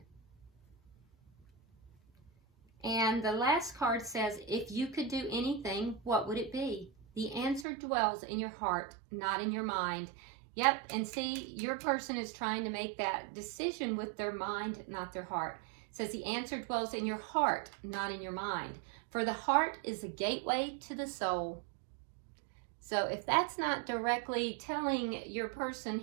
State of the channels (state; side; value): drops out; left; at 7.7 s